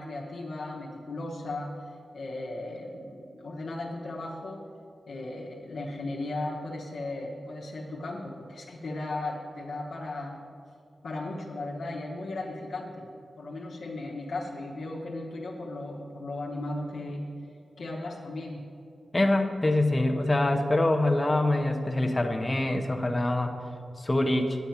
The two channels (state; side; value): normal; both; correlation 0.95